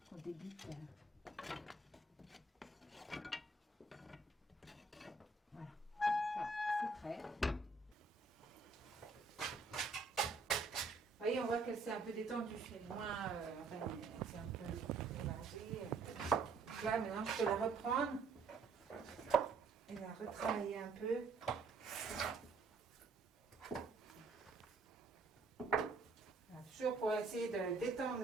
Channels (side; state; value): left; quieter; 3.9 dB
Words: On débute. Voilà, c'est prêt. Vous voyez, on voit qu'elle s'est un peu détendue, elle est moins, enfin, elle s'est un peu mélangée. Là, maintenant, je peux la reprendre et la retravailler un peu. Voilà, toujours pour essayer de détendre